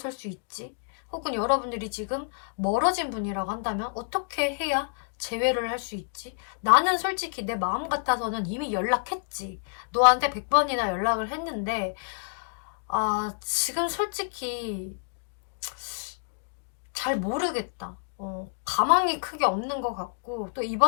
수 있지? 혹은 여러분들이 지금 멀어진 분이라고 한다면 어떻게 해야 재회를 할 수 있지? 나는 솔직히 내 마음 같아서는 이미 연락했지. 너한테 100번이나 연락을 했는데 지금 솔직히 잘 모르겠다. 가망이 크게 없는 것 같고 또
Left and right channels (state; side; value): silent; right; digital silence